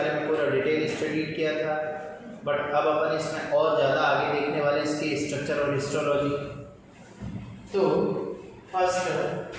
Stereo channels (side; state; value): both; identical; correlation 1.00